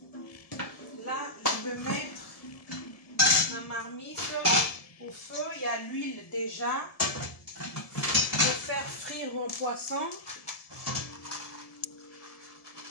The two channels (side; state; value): right; late; 1.7 ms